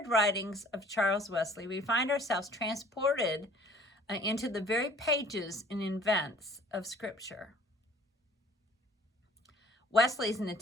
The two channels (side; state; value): both; normal; correlation 0.52